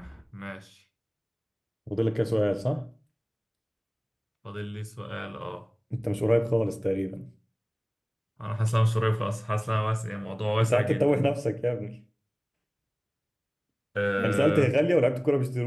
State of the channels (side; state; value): both; identical; correlation 1.00